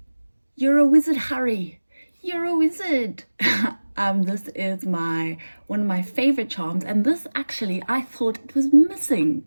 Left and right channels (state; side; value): inverted; both; correlation -1.00